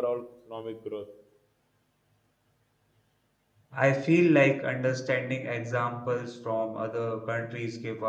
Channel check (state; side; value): identical; both; correlation 1.00